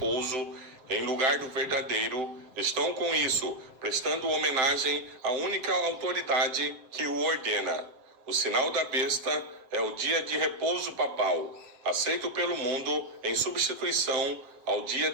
em lugar do verdadeiro, estão com isso prestando homenagem à única autoridade que o ordena. O sinal da besta é o dia de repouso papal, aceito pelo mundo em substituição ao dia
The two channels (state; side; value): late; left; 7.3 ms